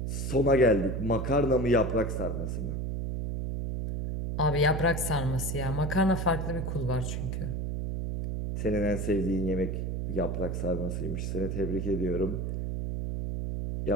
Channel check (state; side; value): noise; right; hum, 2 dB below the sound